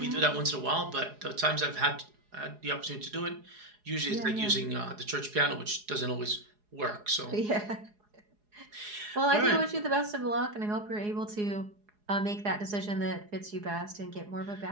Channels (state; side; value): late; left; 4.8 ms